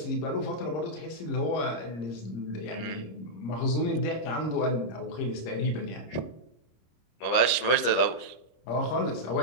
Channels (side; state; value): right; late; 25 ms